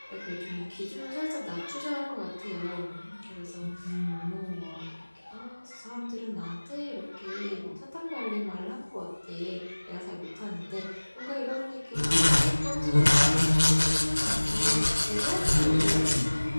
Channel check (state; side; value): inverted; both; correlation -1.00